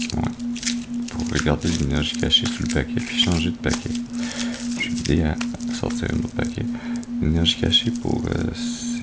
regarder l'énergie cachée sous le paquet puis changer de paquet. Je vais aider à sortir un autre paquet. L'énergie cachée pour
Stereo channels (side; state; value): both; identical; correlation 1.00